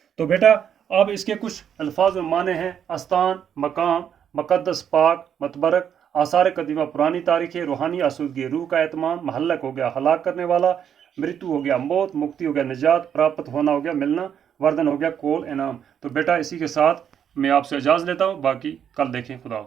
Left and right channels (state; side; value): quieter; left; 8.6 dB